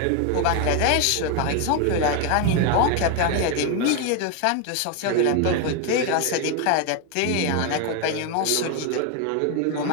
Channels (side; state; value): both; different; correlation 0.01